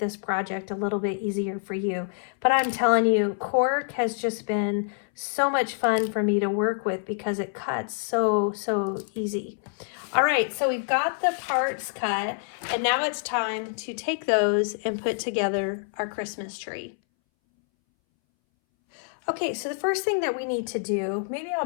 project a little bit easier for you. But I'm telling you, cork has just been so much fun for me to work with because it cuts so easy. All right, so we've got the parts cut, and now it's time to take those and put together our Christmas tree. Okay, so the first thing that we need to do, maybe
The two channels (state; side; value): silent; right; 60 dB below the other